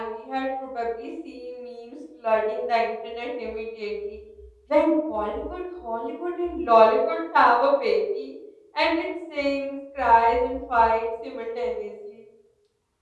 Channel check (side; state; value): both; identical; correlation 1.00